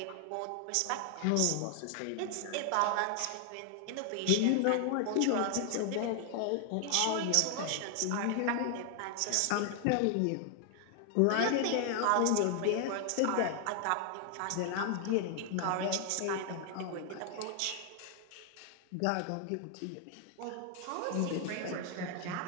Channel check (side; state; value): both; different; correlation 0.00